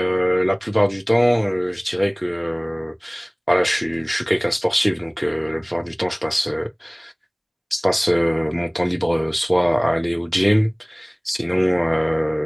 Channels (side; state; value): both; identical; correlation 1.00